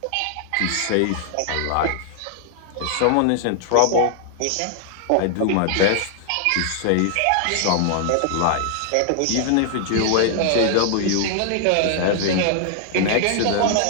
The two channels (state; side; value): different; both; correlation 0.00